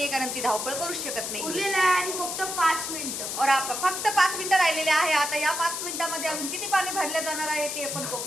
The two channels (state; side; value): noise; left; hiss, 4 dB below the sound